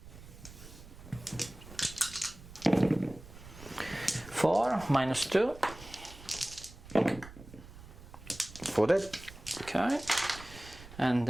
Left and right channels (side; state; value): right; noise; rumble, 17 dB below the sound